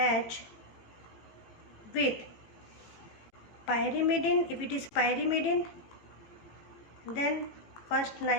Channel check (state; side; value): late; right; 18 ms